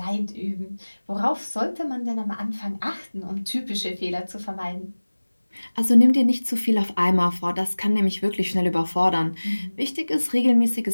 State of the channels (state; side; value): inverted; both; correlation -1.00